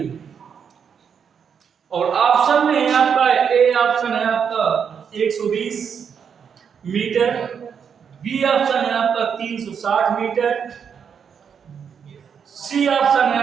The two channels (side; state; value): left; quieter; 7.1 dB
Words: और ऑप्शन में है आपका ए ऑप्शन है आपका 120 मीटर, बी ऑप्शन है आपका 360 मीटर, सी ऑप्शन है